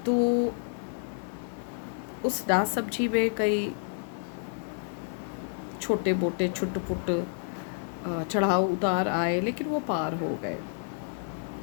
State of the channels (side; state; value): right; silent; digital silence